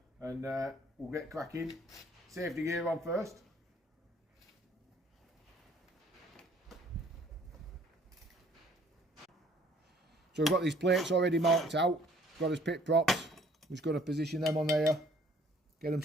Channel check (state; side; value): normal; both; correlation 0.59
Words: and we'll get cracking. Safety gear on first. So we've got these plates already marked out, got his pit props. We're just going to position them on there, get them